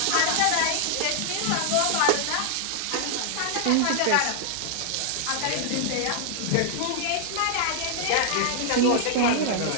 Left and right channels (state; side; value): different; both; correlation -0.01